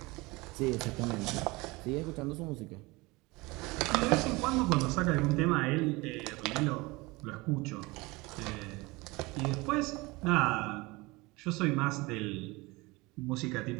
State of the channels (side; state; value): left; quieter; 23.3 dB